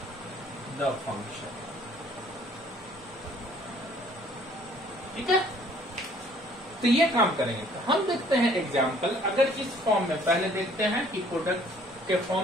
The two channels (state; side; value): normal; both; correlation 0.58